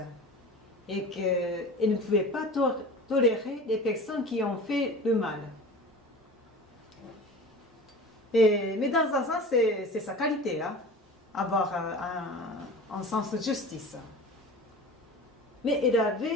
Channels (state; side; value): normal; both; correlation 0.37